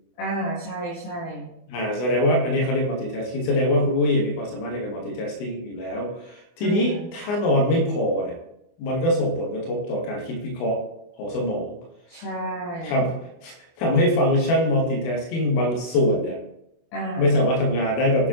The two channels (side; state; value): right; late; 24 ms